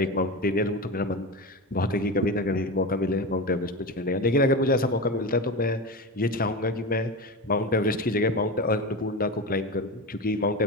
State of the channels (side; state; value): both; normal; correlation 0.22